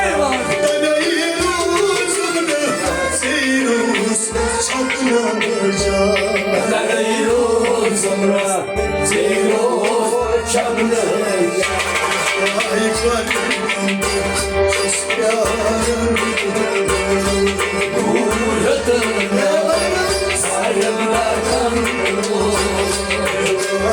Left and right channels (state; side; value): identical; both; correlation 1.00